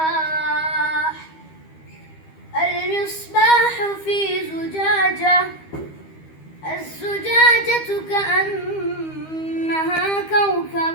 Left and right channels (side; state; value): right; late; 13 ms